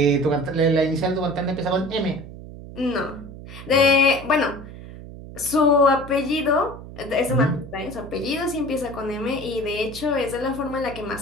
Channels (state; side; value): noise; right; hum, 14 dB below the sound